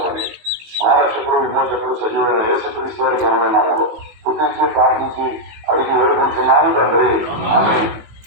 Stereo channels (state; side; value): late; left; 18 ms